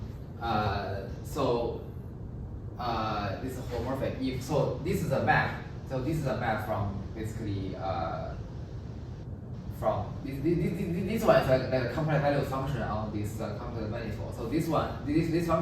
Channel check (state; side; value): identical; both; correlation 1.00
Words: this is holomorphic if so this is a map. So this is a map from basically from this one is like a complex value function on this complex manifold. So this one this